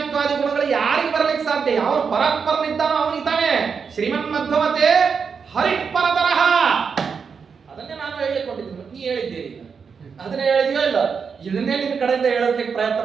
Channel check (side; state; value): left; quieter; 6.0 dB